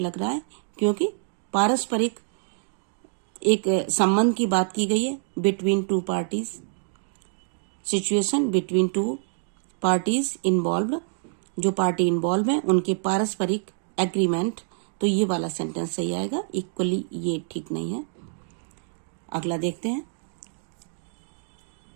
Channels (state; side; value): silent; left; 61 dB below the other